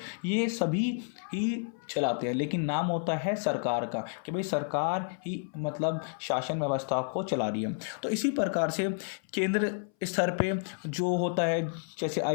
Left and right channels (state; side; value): silent; right; 57 dB below the other